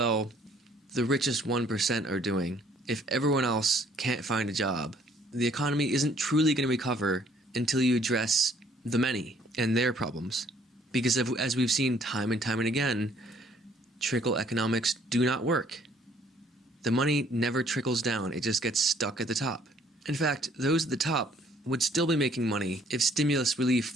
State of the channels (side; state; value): both; normal; correlation 0.62